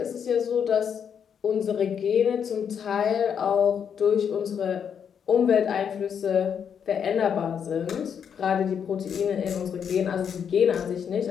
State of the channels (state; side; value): quieter; right; 7.7 dB